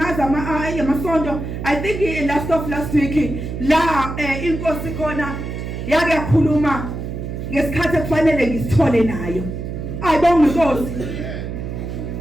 amasonto I think last week la inkosi khona yake yakhuluma ngesikhathi ekufanele ngisithole nayo ayibonga inkosi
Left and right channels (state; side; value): noise; right; hum, 6 dB below the sound